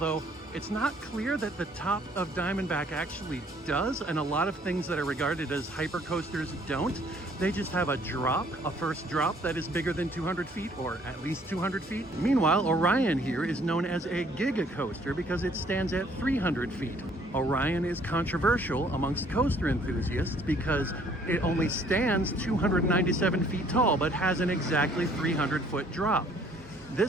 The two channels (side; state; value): both; normal; correlation 0.61